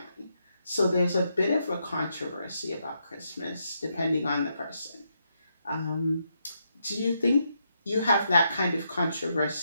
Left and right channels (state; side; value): inverted; both; correlation -0.80